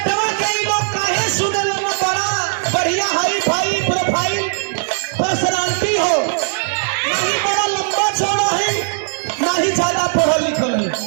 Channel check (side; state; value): left; silent; digital silence